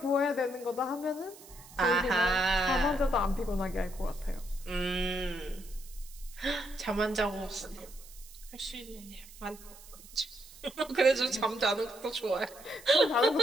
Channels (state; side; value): noise; right; hiss, 19 dB below the sound